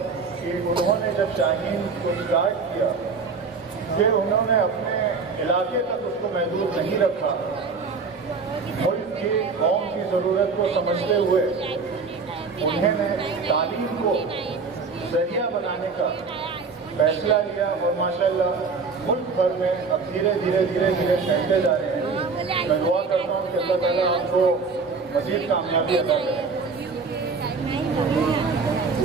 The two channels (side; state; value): left; quieter; 4.7 dB